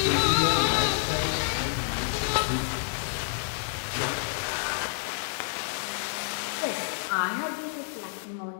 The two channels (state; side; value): silent; right; digital silence